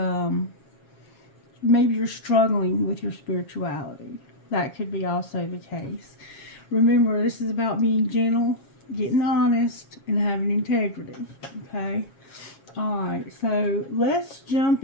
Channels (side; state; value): right; late; 7.3 ms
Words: maybe you're struggling with your spirituality. That could be also the case. Remember, this is about being gentle, getting honest, and having integrity. Okay? Alright, so let's jump